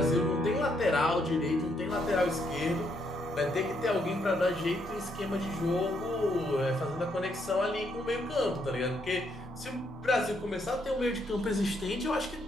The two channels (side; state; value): both; normal; correlation 0.74